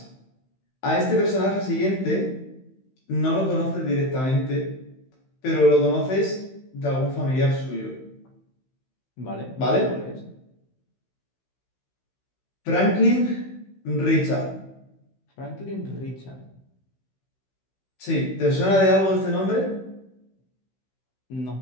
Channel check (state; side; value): late; right; 16 ms